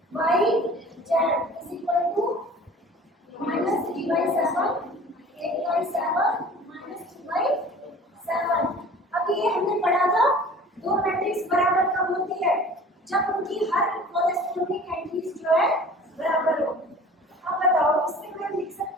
y z is equal to -3/7 8/7 -2/7। अब ये हमने पढ़ा था दो मैट्रिक्स बराबर कब होती है जब उनकी हर कॉरेस्पॉन्डिंग एंट्रीज जो है बराबर हो। अब बताओ इससे मैं लिख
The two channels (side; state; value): both; normal; correlation 0.44